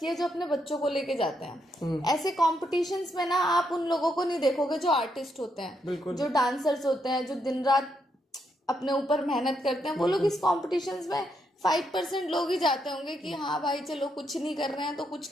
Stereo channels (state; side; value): normal; both; correlation 0.78